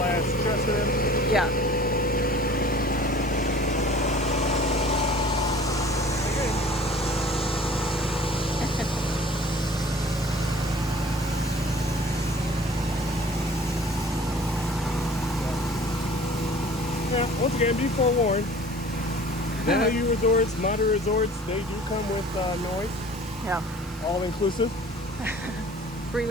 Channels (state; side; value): normal; both; correlation 0.48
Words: / dresser. Yeah. Once again, be forewarned. Value resorts, moderate resorts, they do come with noise, Yeah. all inclusive. Free